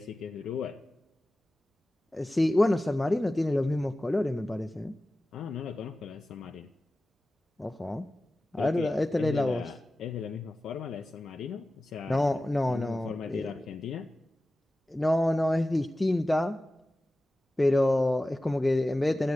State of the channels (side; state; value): both; normal; correlation 0.95